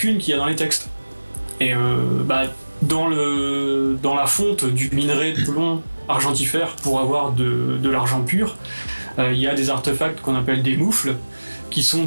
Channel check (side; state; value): both; inverted; correlation -1.00